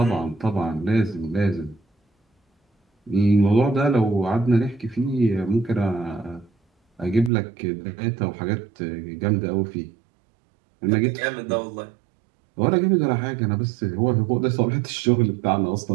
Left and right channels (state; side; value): drops out; left; at 7.3 s